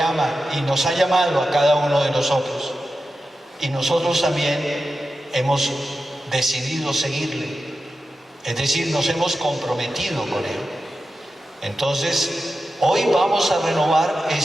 y nos ha llamado a cada uno de nosotros. Y nosotros también hemos decidido seguirle, es decir, nos hemos comprometido con Él. Entonces, hoy vamos a renovar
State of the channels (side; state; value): both; normal; correlation 0.91